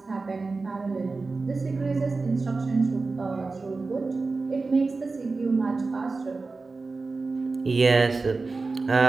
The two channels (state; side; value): quieter; left; 3.9 dB